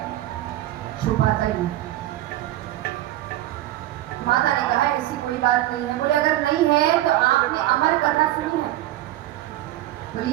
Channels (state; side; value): quieter; left; 14.9 dB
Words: छुपाता ही। माता ने कहा ऐसी कोई बात नहीं है। बोले अगर नहीं है तो आपने अमर कथा सुनी है? बोले